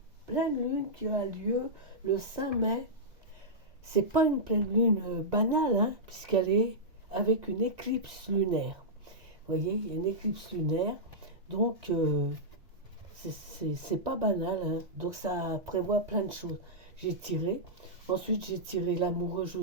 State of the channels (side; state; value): left; late; 1.6 ms